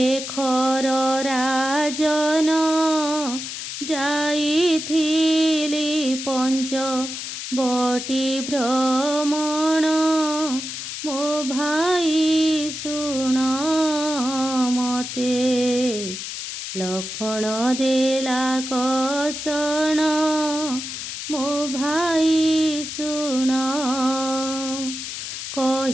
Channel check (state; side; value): noise; left; hiss, 7 dB below the sound